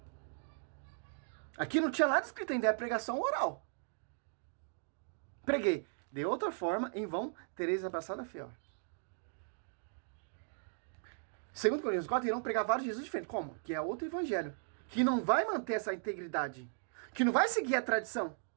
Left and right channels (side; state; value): left; silent; digital silence